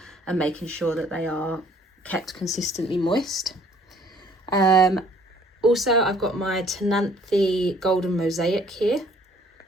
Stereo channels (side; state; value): both; normal; correlation 0.58